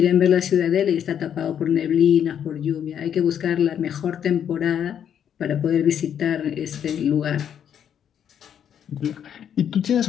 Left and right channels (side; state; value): right; quieter; 9.0 dB